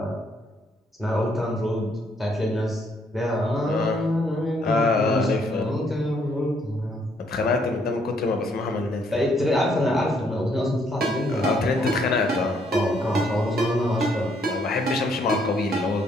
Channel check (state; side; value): normal; both; correlation 0.69